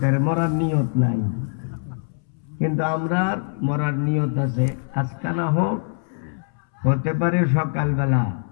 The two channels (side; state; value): right; silent; 63 dB below the other